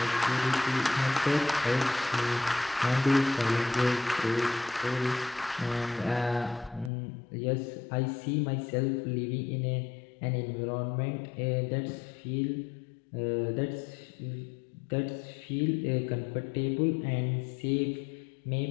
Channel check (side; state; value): right; drops out; at 6.9 s